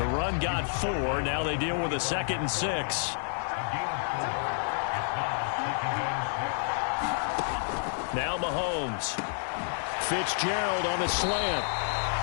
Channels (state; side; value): silent; right; digital silence